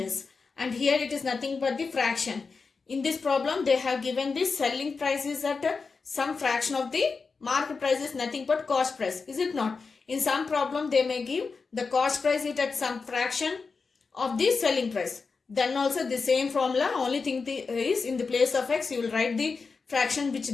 And here it is nothing but the fraction. In this problem, they have given the selling price is at some fraction of the market price is nothing but cost price. Is it not? In some problem, they may give the cost price is at some fraction of the selling price. Then also the same formula, only thing is in the place of X, you will write the fraction which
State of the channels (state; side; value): quieter; right; 4.7 dB